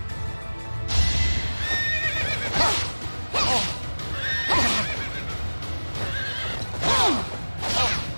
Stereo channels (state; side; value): inverted; both; correlation -1.00